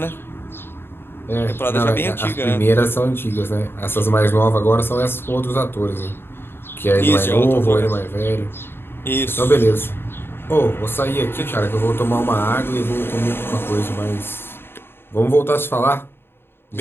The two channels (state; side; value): late; right; 0.11 ms